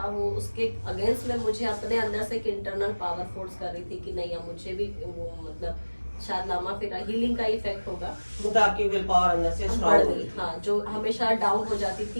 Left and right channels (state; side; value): inverted; both; correlation -1.00